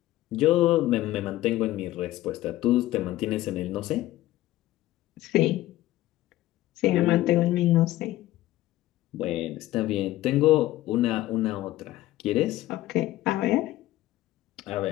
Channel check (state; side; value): quieter; right; 15.8 dB